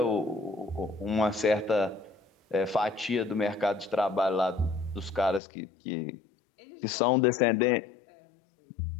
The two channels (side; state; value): right; drops out; at 5.4 s